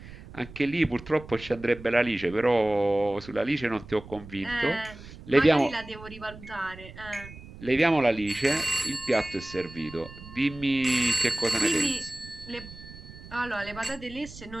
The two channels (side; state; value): right; noise; rumble, 16 dB below the sound